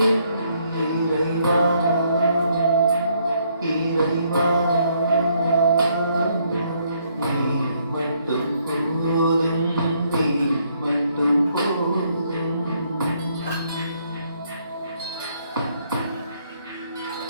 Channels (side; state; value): both; inverted; correlation -0.70